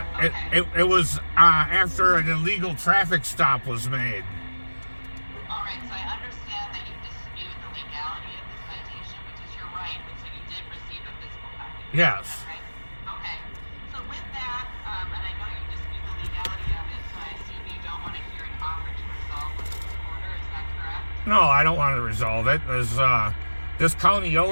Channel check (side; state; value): both; inverted; correlation -1.00